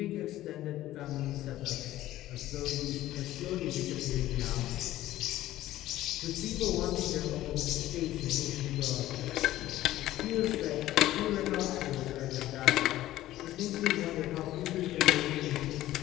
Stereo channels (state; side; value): quieter; right; 14.8 dB